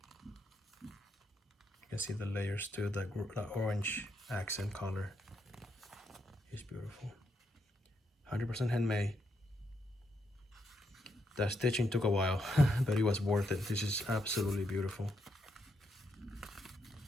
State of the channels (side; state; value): both; normal; correlation 0.79